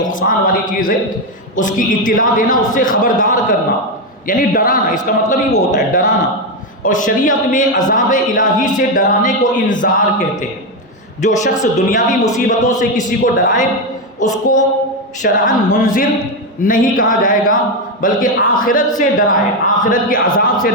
والی چیز ہے، اس کی اطلاع دینا، اس سے خبردار کرنا، یعنی ڈرانا۔ اس کا مطلب ہی وہ ہوتا ہے، ڈرانا۔ اور شریعت میں عذاب الہی سے ڈرانے کو انذار کہتے ہیں۔ جو شخص دنیاوی مصیبتوں سے کسی کو ڈرائے اس کو شرعاً منذر نہیں کہا جائے گا، بلکہ آخرت سے ڈرائے، آخرت کے عذاب سے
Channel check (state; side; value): normal; both; correlation 0.08